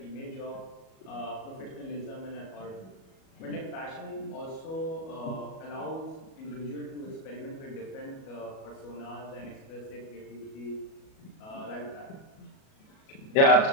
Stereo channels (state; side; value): late; right; 37 ms